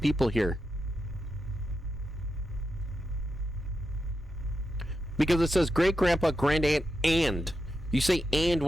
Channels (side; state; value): both; normal; correlation 0.88